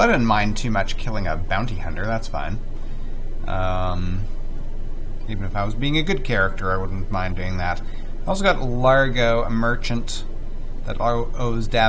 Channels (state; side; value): identical; both; correlation 1.00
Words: I didn't mind too much killing a bounty hunter, that's fine. Even if I was being a good character, I wouldn't mind doing that. I also got Largo, a merchant that owes